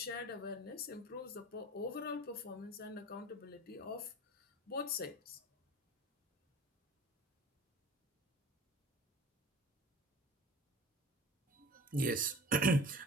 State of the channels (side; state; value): both; normal; correlation 0.42